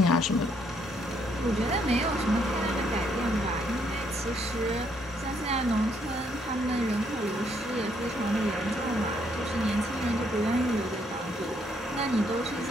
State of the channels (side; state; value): both; normal; correlation 0.71